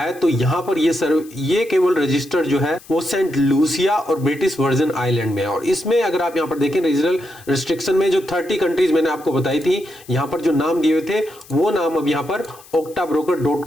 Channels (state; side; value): noise; left; hiss, 23 dB below the sound